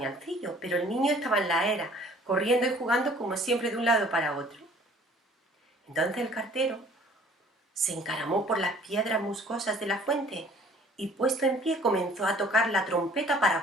pero el niño estaba en la era, corriendo y jugando como siempre de un lado para otro. Entonces el cartero se encaramó por las piedras musgosas de la fuente y, puesto en pie, comenzó a tocar la trompeta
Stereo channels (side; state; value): both; normal; correlation 0.53